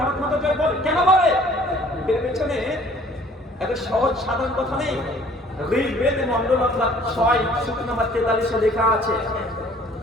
ভারত মাতা জয় বলে, কেন বলে? এর পেছনে একটা সহজ সাধারণ কথা নেই। ঋগ্বেদে মন্ডল 6 সূক্ত নম্বর 43 লেখা আছে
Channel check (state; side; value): normal; both; correlation 0.55